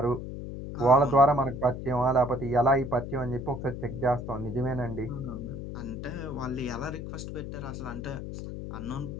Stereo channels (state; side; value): noise; left; hum, 7 dB below the sound